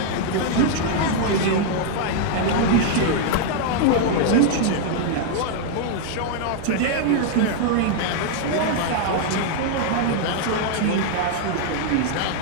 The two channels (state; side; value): different; both; correlation 0.00